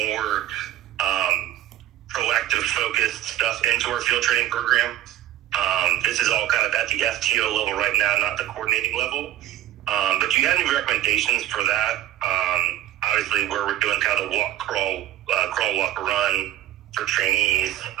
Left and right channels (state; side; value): quieter; left; 13.1 dB